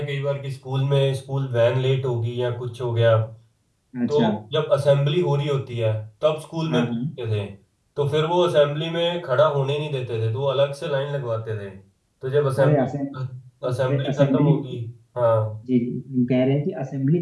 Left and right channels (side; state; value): both; identical; correlation 1.00